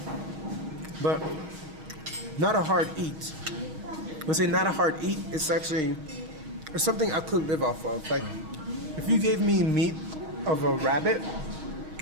but not a hard eat. When I say not a hard eat, it's something I could live off of. Like, if you gave me meat of a rabbit,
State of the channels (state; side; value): late; left; 6.4 ms